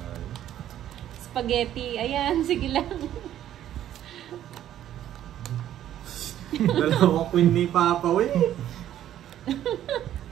Spaghetti. Ayan, sige lang. Dalawang queen ni Papa, we.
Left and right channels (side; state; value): left; quieter; 11.6 dB